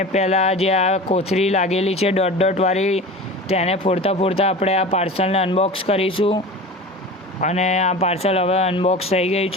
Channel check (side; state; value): both; normal; correlation 0.34